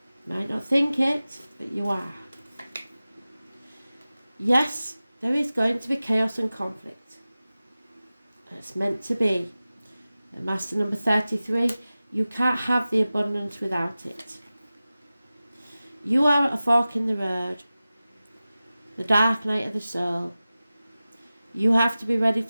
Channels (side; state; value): both; inverted; correlation -0.96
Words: You might not think it, but you are. Yes, there is going to be chaos and conflict. It's meant to be. And Master number 33, you can't have the abundance without it. You are at a fork in the road, the dark night of the soul. You have to be ready